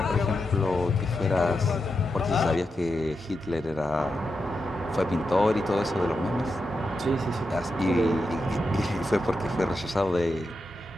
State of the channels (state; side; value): normal; both; correlation 0.87